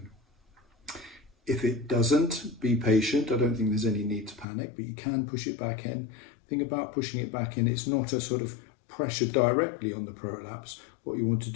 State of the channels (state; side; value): drops out; right; at 4.5 s